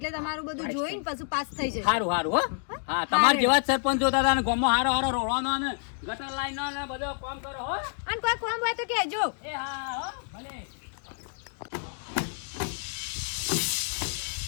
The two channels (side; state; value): right; silent; 59 dB below the other